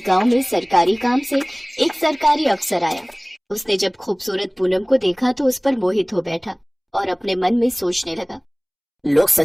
गांव में सरकारी काम से एक सरकारी अफसर आया। उसने जब खूबसूरत पूनम को देखा तो उस पर मोहित हो बैठा और अपने मन में सोचने लगा। लोग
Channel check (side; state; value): both; identical; correlation 1.00